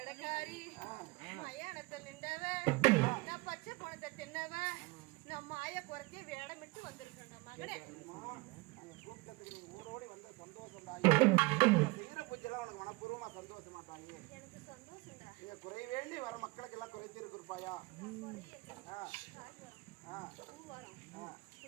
பச்சை பணத்தை தின்னவ நான் மாய குறைச்சி வேடமிட்டு வந்திருக்கேன் மகனே. ஊரோடி வந்து சந்தோஷம் பூச்செல்லாம் உனக்கு மனப்பூர்வமா சந்தோஷமா தாயி? எனக்கு சந்தோஷம்டா. நீங்க குறை வேண்டி வர மக்களுக்கு எல்லாம் குறைத்திருக்கு இருப்பாயா?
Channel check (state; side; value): quieter; left; 24.2 dB